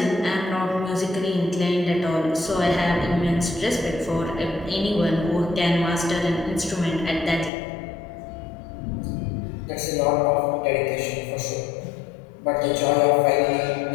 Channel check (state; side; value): drops out; right; at 7.5 s